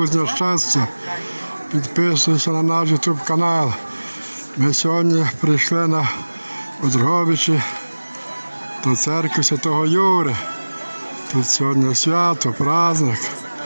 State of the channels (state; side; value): inverted; both; correlation -1.00